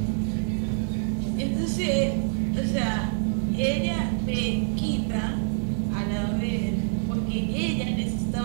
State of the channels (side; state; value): left; silent; digital silence